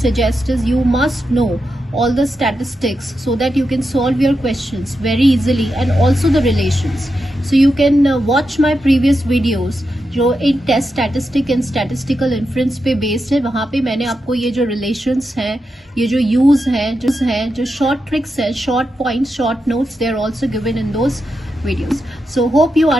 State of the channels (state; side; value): normal; both; correlation 0.88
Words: is you must know all the statistics so that you can solve your questions very easily, and also the relations. So you can watch my previous videos जो एक test statistic and statistical inference पे बेस्ड है. वहां पे मैंने आपको ये जो रिलेशंस हैं, ये जो यूज है, जो शॉर्ट ट्रिक्स है, short points, short notes, they are also given in those videos. So hope you